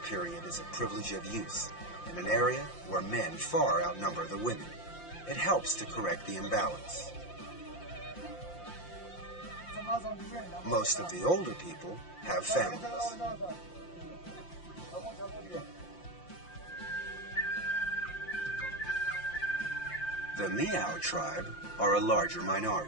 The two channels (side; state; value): right; late; 5.7 ms